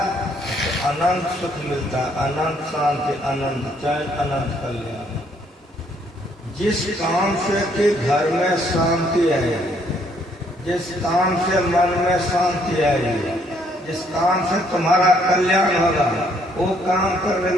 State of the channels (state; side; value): normal; both; correlation 0.68